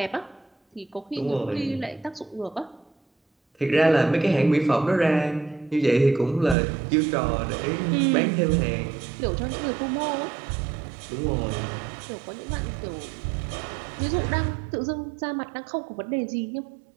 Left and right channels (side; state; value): left; drops out; at 6.6 s